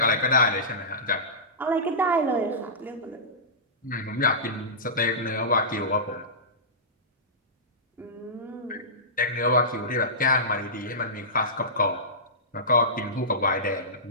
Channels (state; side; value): normal; both; correlation -0.19